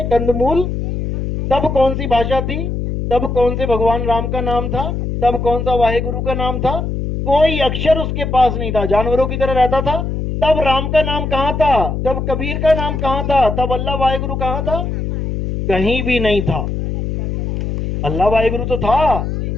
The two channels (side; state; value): left; noise; hum, 3 dB below the sound